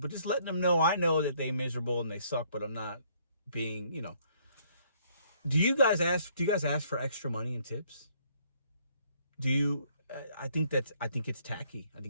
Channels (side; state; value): both; inverted; correlation -0.65